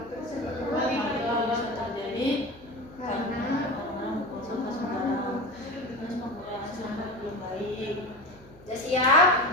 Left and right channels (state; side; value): noise; right; hum, 22 dB below the sound